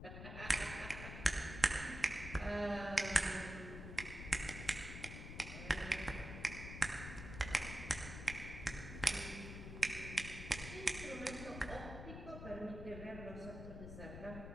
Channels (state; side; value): noise; left; rumble, 9 dB below the sound